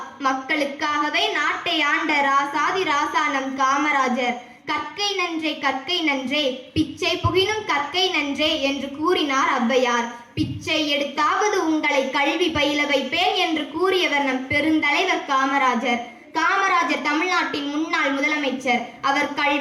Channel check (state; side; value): identical; both; correlation 1.00